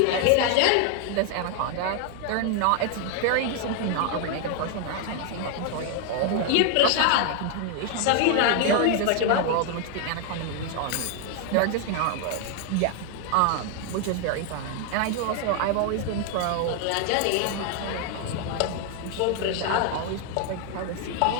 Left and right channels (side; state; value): both; different; correlation 0.00